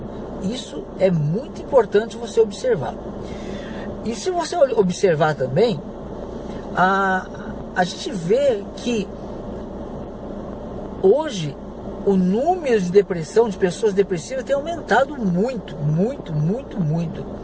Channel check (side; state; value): both; identical; correlation 1.00